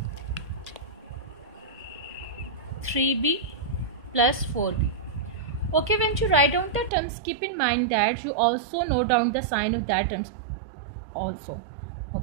3b plus 4b. Okay, when you write down the terms, keep in mind that you also note down the sign of that terms also.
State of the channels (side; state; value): left; drops out; at 6.9 s